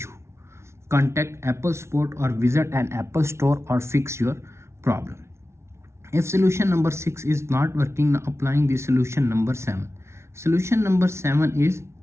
contact Apple support or visit an Apple store or fix your problem. If solution number 6 is not working, applying the solution number 7. Solution number 7 is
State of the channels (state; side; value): late; left; 0.13 ms